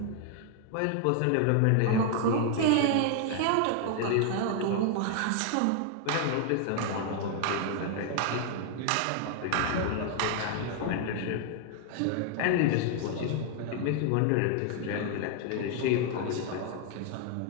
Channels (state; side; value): different; both; correlation 0.00